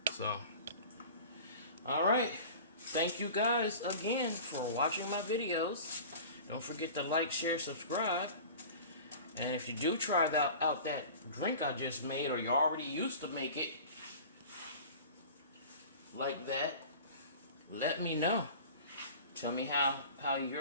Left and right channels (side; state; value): both; inverted; correlation -0.39